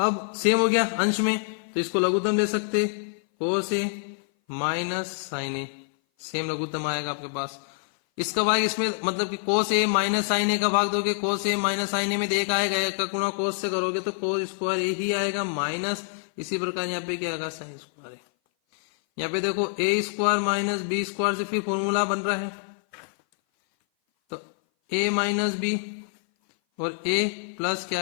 सेम हो गया अंश में तो इसको लघुत्तम ले सकते कोस ए माइनस साइन ए, सेम लघुत्तम आएगा आपके पास। इसका भाग इसमें मतलब कि कोस ए माइनस साइन ए का भाग दोगे कोस ए माइनस साइन ए में एक आएगा, एक का गुणा कोस से करोगे तो कोस स्क्वायर ए ही आएगा माइनस इसी प्रकार यहाँ पे क्या आएगा साइन स्क्वायर ए। यहाँ पे देखो ए स्क्वायर माइनस बी स्क्वायर से फिर फॉर्मूला बन रहा है तो ए माइनस बी और ए प्लस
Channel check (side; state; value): right; silent; 57 dB below the other